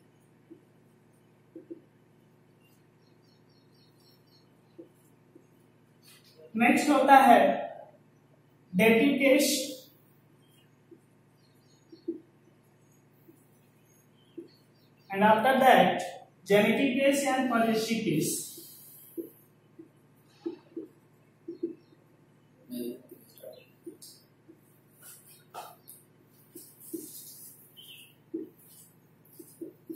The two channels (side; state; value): both; identical; correlation 1.00